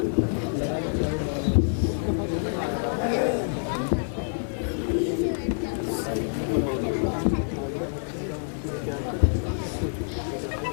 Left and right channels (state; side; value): silent; right; 58 dB below the other